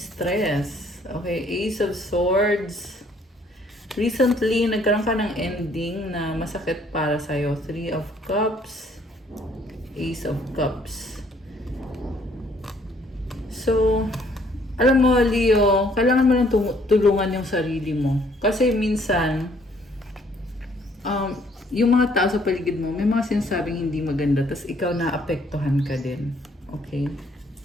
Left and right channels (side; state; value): both; normal; correlation 0.63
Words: Okay, Ace of Swords. Recently, nagkaroon ka ng ending na masakit para sa'yo. Three of Cups, Ace of Cups. So, alam mo, Leo, kailangan mo lang tulungan yung sarili mo. Kasi minsan, yung mga tao sa paligid mo, may mga sinasabing hindi maganda, tas ikaw naapektuhan ka din. Okay?